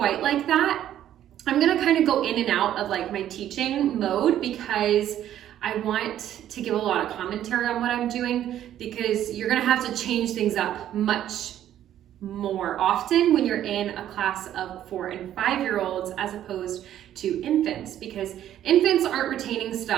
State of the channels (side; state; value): left; quieter; 11.5 dB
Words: like that. I'm going to kind of go in and out of like my teaching mode because I want to give a lot of commentary on what I'm doing, because you're going to have to change things up much more often when you're in a class of 4 and 5-year-olds as opposed to infants, because infants aren't retaining